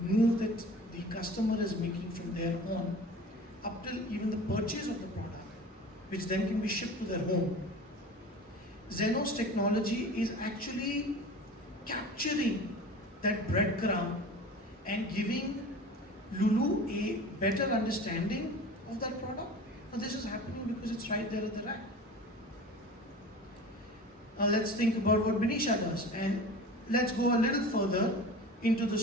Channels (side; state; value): both; normal; correlation 0.37